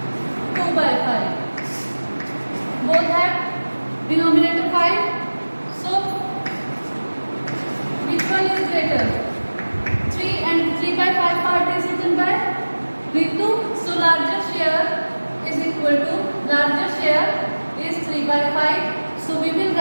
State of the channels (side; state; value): both; inverted; correlation -1.00